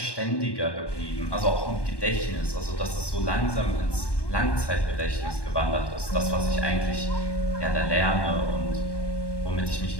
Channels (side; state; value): right; late; 1.1 ms